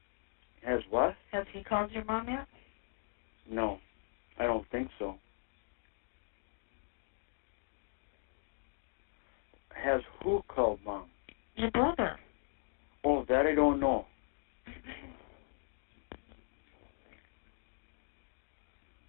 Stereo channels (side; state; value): right; silent; 52 dB below the other